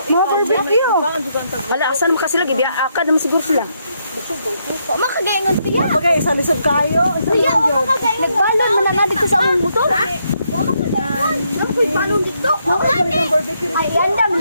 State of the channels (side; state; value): both; inverted; correlation -0.77